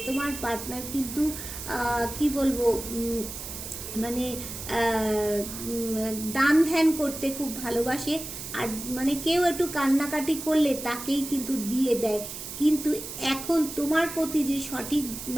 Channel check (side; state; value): right; noise; hiss, 9 dB below the sound